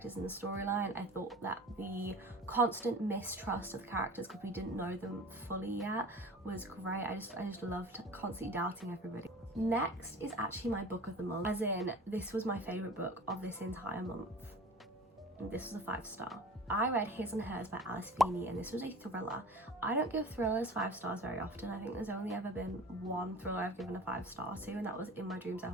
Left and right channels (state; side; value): normal; both; correlation 0.40